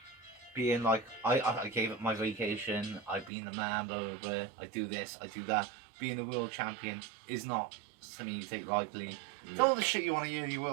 being like, I gave up my vacation, I've been the man, blah, blah, blah, I do this, I do that. Being a world champion is not something you take lightly. It's all the shit you want to hear your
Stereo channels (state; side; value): drops out; left; at 3.3 s